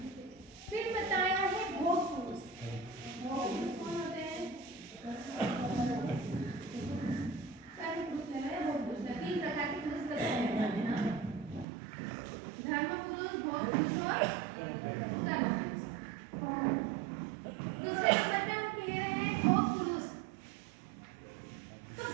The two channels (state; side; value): drops out; left; at 11.7 s